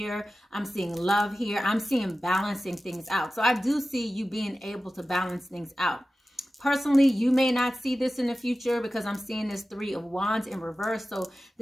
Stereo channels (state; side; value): normal; both; correlation 0.95